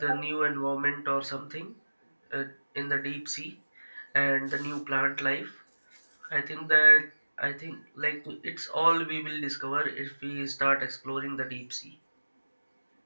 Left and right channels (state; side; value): inverted; both; correlation -1.00